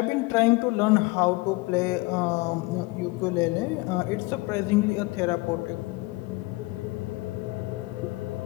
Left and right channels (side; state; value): right; quieter; 23.2 dB